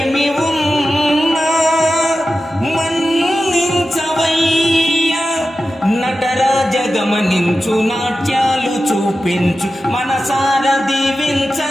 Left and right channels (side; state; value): both; normal; correlation 0.93